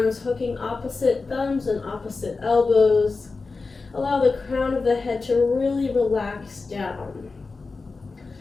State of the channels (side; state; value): right; quieter; 4.1 dB